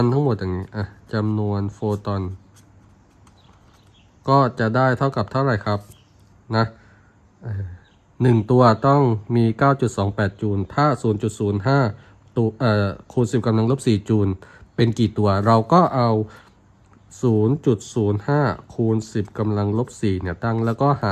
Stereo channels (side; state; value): both; identical; correlation 1.00